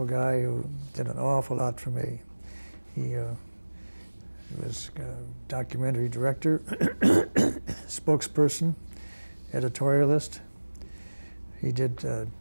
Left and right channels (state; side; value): inverted; both; correlation -1.00